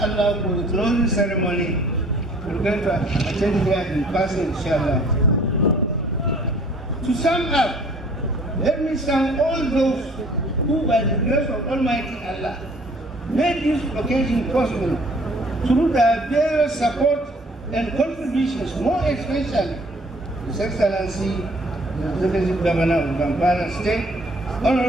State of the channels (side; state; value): both; normal; correlation 0.55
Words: for the closing ceremony we're going to attend here in person inshallah. To sum up, let me thank all those who by the grace of Almighty Allah made this occasion possible through their various support and contributions, more especially His Excellency the Executive Governor of ZAMFARA State,